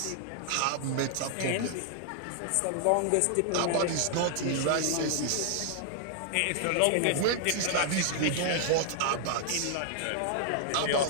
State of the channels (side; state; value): both; different; correlation -0.01